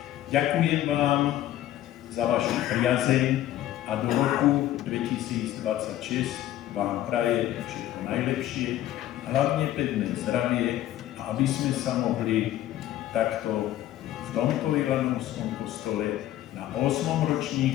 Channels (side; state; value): right; quieter; 13.4 dB